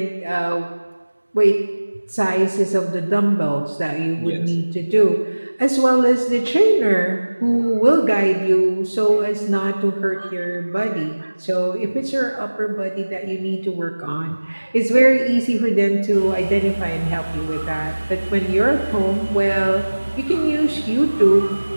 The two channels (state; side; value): inverted; both; correlation -1.00